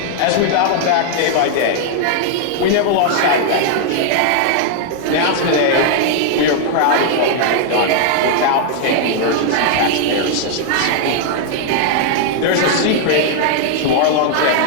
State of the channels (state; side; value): different; both; correlation 0.00